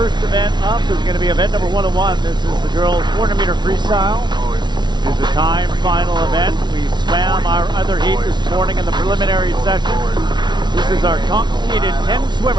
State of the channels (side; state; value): left; late; 0.21 ms